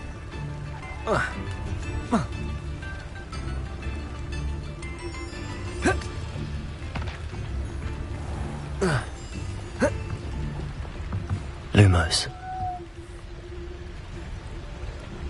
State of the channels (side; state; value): both; identical; correlation 1.00